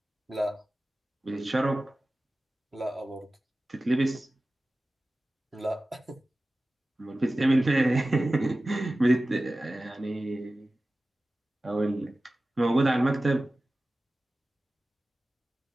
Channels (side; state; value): both; normal; correlation 0.96